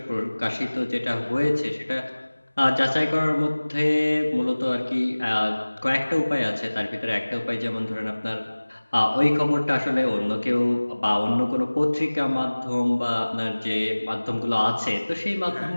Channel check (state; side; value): inverted; both; correlation -1.00